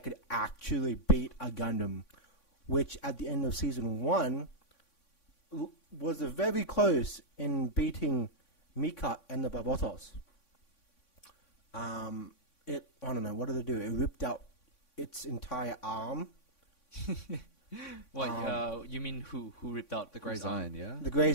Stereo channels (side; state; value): right; late; 3.6 ms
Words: could actually beat a Gundam, which at the end of season 1 was very close in beating Mika and the Barbatos. I don't know, what did it do? It ripped out its entire arm. What? You mean who ripped out The whose Greys arm? Ein, yeah? The